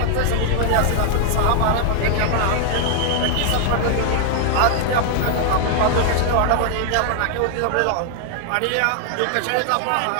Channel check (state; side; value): different; both; correlation 0.00